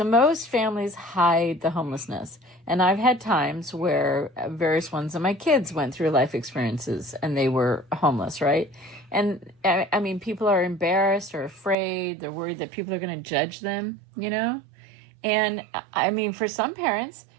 most families hide the homelessness. And I've had times where various ones of my kids went through life experiences and they were homeless, right? And I mean, people are embarrassed or afraid. They're worried that people are going to judge them, And I mean, for some parents,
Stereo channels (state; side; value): drops out; left; at 11.8 s